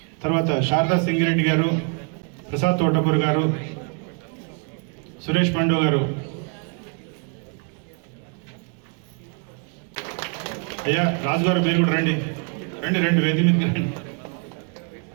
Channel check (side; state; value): left; quieter; 37.9 dB